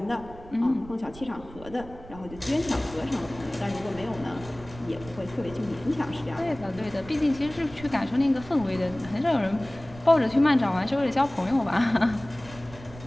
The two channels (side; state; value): right; noise; rumble, 17 dB below the sound